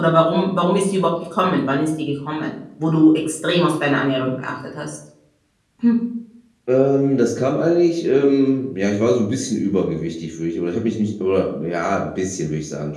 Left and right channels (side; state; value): both; identical; correlation 1.00